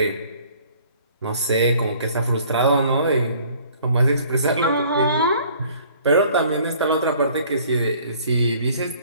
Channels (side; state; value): both; inverted; correlation -0.55